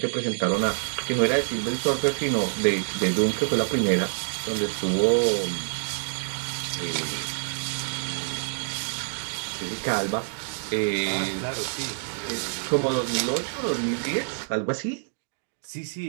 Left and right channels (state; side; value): silent; left; digital silence